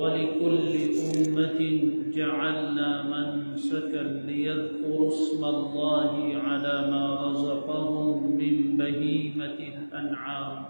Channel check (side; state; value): both; inverted; correlation -1.00